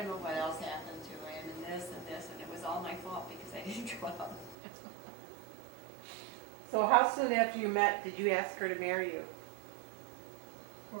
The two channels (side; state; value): left; drops out; at 4.5 s